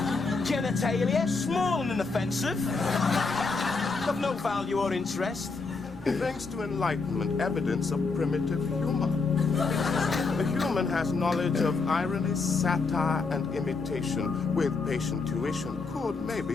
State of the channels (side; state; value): right; quieter; 4.2 dB